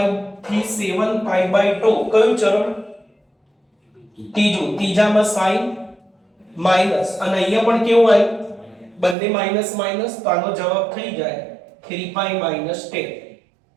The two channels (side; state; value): left; drops out; at 9.2 s